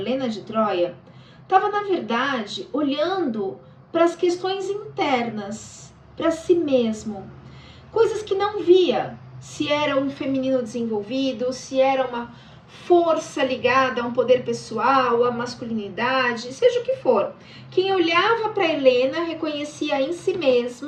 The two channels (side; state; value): both; identical; correlation 1.00